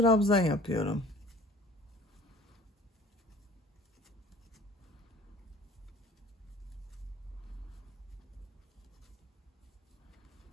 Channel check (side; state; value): both; normal; correlation 0.47